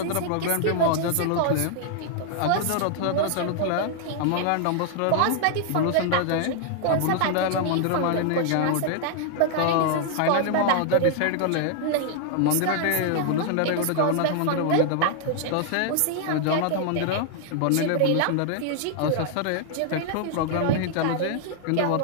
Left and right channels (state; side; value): different; both; correlation 0.00